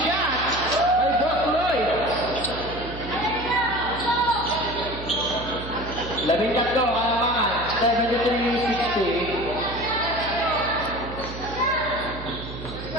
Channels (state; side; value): noise; right; hum, 10 dB below the sound